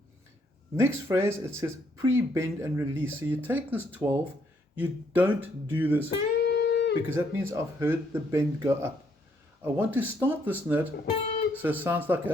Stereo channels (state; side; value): normal; both; correlation 0.71